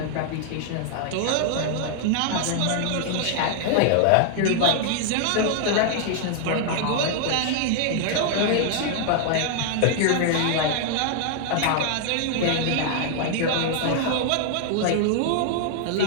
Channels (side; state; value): both; different; correlation 0.00